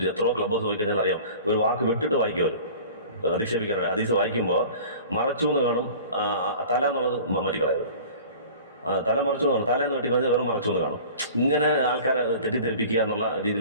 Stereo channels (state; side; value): inverted; both; correlation -0.42